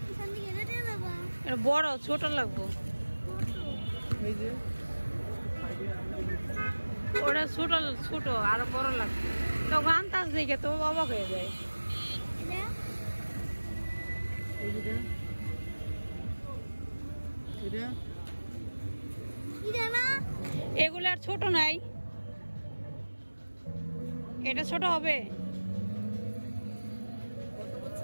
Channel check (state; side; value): inverted; both; correlation -1.00